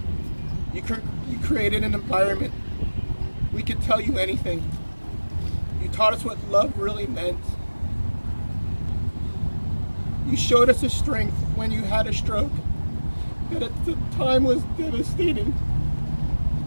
You created an environment we could tell you anything. You taught us what love really meant. You showed us a strength when you had a stroke that at the time was devastating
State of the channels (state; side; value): inverted; both; correlation -1.00